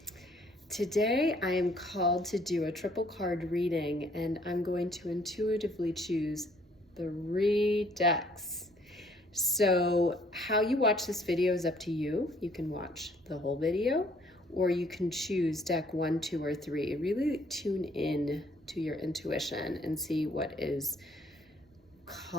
Today I am called to do a triple card reading, and I'm going to intuitively choose 3 decks. So how you watch this video is up to you. You can watch the whole video, or you can choose deck 1, 2, or 3. Really tune in to your intuition and see what is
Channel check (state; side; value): normal; both; correlation 0.62